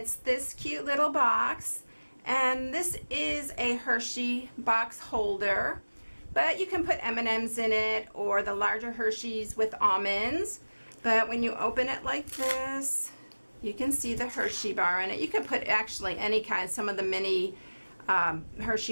this cute little box. And this is a Hershey box holder, but you can put M&Ms in it or the larger Hershey's with almonds. But when you open it like this, you can see the Hershey bar in it. You can put actually any kind. Some of the mini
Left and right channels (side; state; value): both; inverted; correlation -1.00